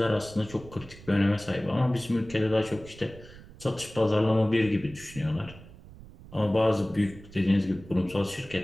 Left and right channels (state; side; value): noise; right; rumble, 18 dB below the sound